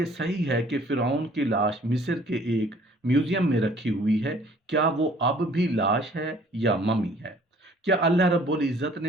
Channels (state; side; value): normal; both; correlation 0.56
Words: सही है कि फिरौन की लाश मिस्र के एक म्यूजियम में रखी हुई है? क्या वो अब भी लाश है या ममी है? क्या अल्लाह रब्बुल इज़्ज़त